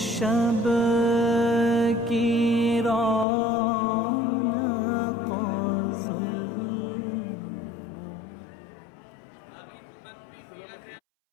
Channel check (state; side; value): drops out; right; at 3.2 s